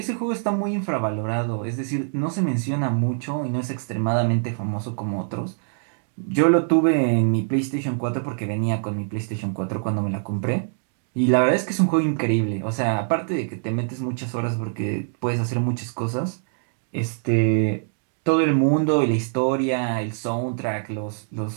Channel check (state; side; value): silent; left; digital silence